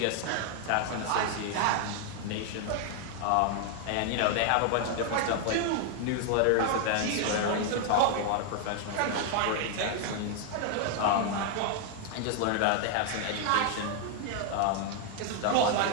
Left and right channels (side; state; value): both; different; correlation 0.00